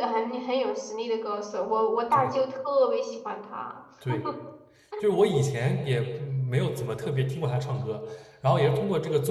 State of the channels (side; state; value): both; identical; correlation 1.00